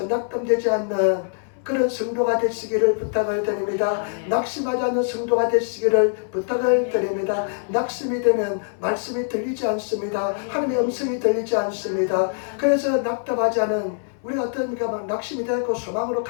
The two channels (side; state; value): right; silent; digital silence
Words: 않는 그런 성도가 되시기를 부탁을 드립니다. 낙심하지 않는 성도가 되시기를 부탁을 드립니다. 낙심이 되면 말씀이 들리지 않습니다. 하나님의 음성이 들리지 않습니다. 그래서 낙담하지 않은 우리가 어떠니까 막 낙심이 되고 소망으로